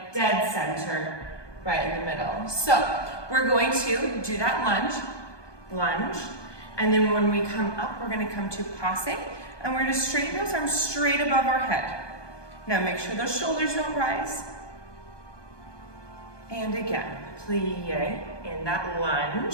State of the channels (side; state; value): right; late; 1.2 ms